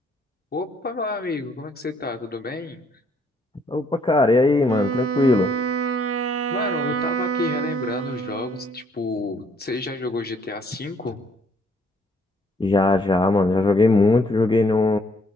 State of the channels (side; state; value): both; normal; correlation 0.66